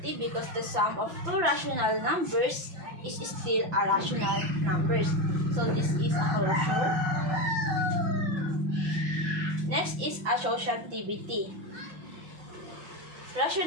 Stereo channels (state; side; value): late; left; 5.9 ms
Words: because the sum of two rational numbers is still a rational numbers. So this is a closure. Next is associativity.